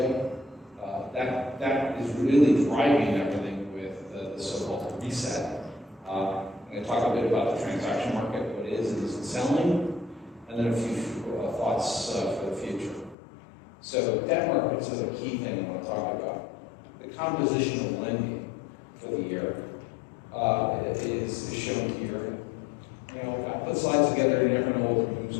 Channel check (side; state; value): right; drops out; at 13.2 s